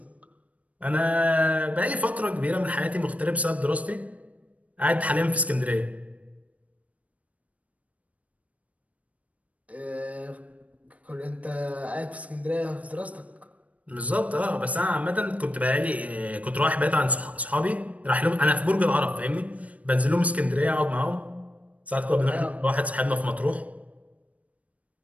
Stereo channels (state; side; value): late; left; 0.068 ms